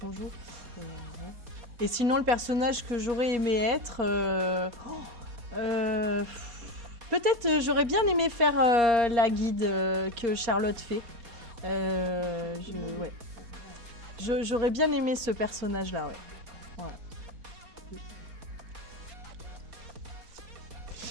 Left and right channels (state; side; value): late; left; 4.2 ms